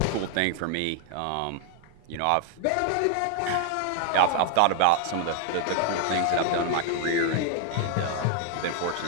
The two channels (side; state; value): both; different; correlation 0.00